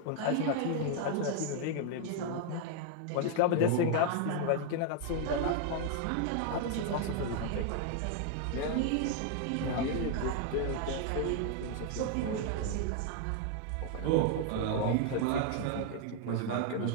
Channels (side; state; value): both; different; correlation 0.00